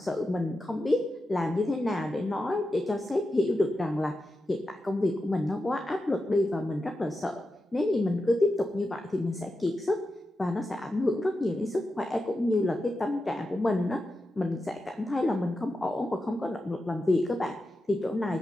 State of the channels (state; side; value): normal; both; correlation 0.90